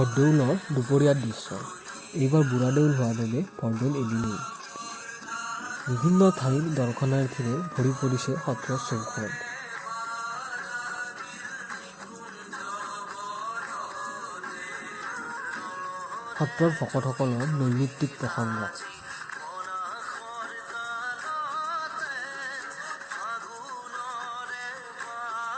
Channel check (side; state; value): both; identical; correlation 1.00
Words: দুপৰীয়াৰ দৃশ্য। এইবাৰ বুঢ়াদেউল হোৱা বাবে বৰদৌল এদিনেই। বিভিন্ন ঠাইৰ দৰ্শনাৰ্থীৰে ভৰি পৰিছে সত্ৰৰ চৌহদ। সত্ৰৰ ভকতসকলৰ নৈমিত্তিক প্ৰসংগ।